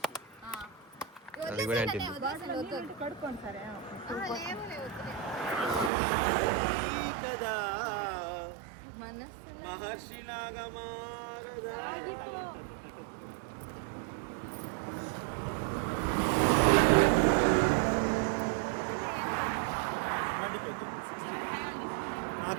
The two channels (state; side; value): drops out; left; at 5.9 s